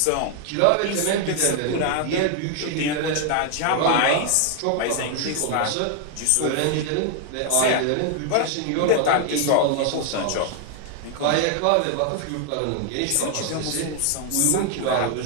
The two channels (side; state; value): both; different; correlation 0.00